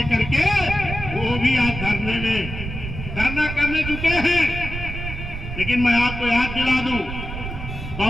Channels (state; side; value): noise; right; rumble, 7 dB below the sound